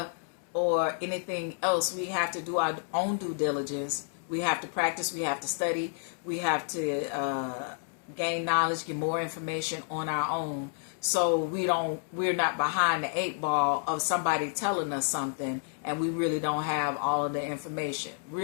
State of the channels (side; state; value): right; silent; 58 dB below the other